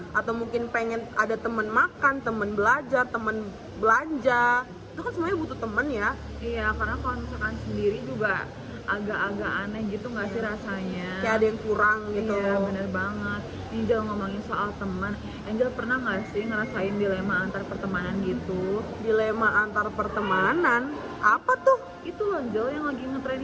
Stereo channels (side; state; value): both; identical; correlation 1.00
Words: atau mungkin pengen ada temen makan, temen belajar, temen belanja, itu kan semuanya butuh temen ya. Iya, karena kalau misalkan sendiri juga agak-agak aneh gitu nggak sih rasanya? Kayak ada yang kurang gitu. Iya, bener banget. Angel ngomongin soal teman, Angel pernah nggak sih ngerasain dilema antar pertemanan gitu? Dilema antar pertemanan? Apa tuh? Itu loh Angel yang lagi ngetren